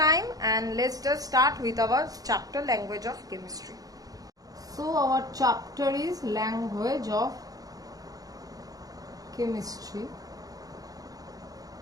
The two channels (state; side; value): late; left; 0.18 ms